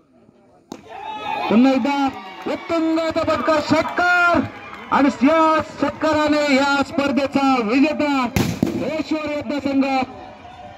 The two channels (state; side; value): identical; both; correlation 1.00